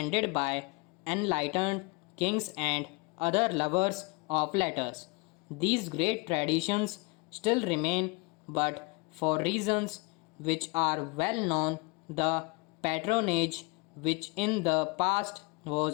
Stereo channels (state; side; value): quieter; right; 28.4 dB